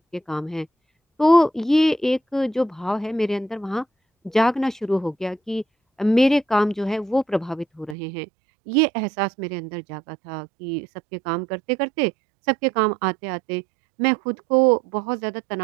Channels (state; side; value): drops out; left; at 8.0 s